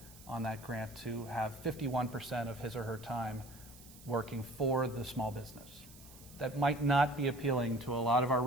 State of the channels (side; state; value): right; noise; hiss, 20 dB below the sound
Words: on that grant to have 51% of his or her time working for the small business. That might not be appealing to a lot of our